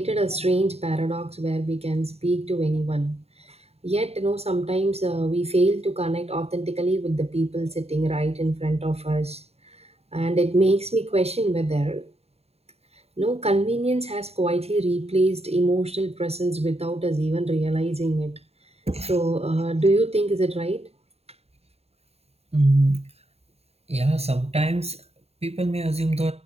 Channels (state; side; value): late; left; 0.30 ms